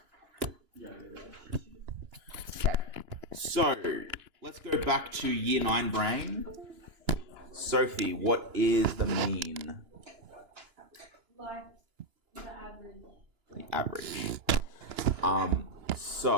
Okay. So, let's go back to year 9 brain. Sophie, what is the mean? Like the average. The average.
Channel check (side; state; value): left; late; 2.9 ms